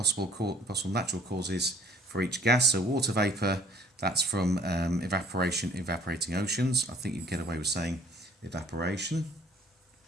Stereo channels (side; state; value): both; normal; correlation 0.58